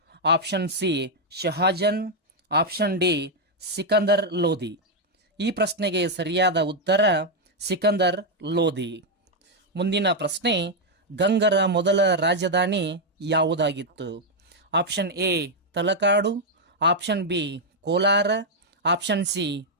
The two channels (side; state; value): both; normal; correlation 0.00